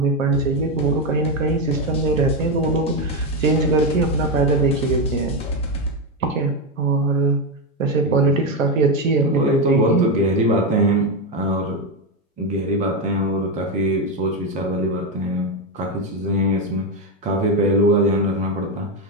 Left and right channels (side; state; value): both; normal; correlation 0.09